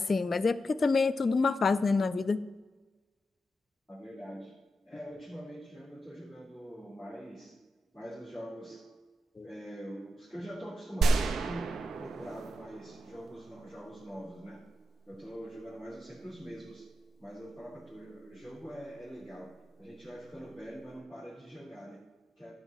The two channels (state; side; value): normal; both; correlation 0.88